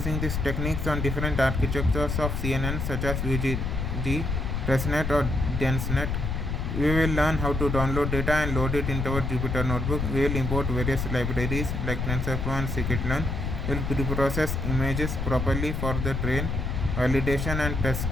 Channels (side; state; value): left; noise; rumble, 2 dB below the sound